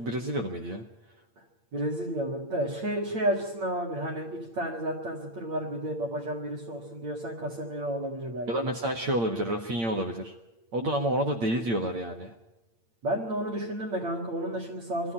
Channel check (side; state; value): left; late; 8.8 ms